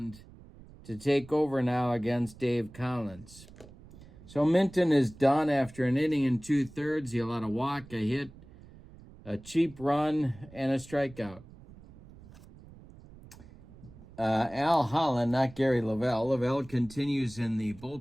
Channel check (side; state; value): right; noise; rumble, 20 dB below the sound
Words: to take over now against Dave Collins. So Minton is done after an inning and 2/3. He allowed a walk, a hit, a cheap run, and a strikeout. Al Holland, not Gary Lavelle. Lavelle continues in the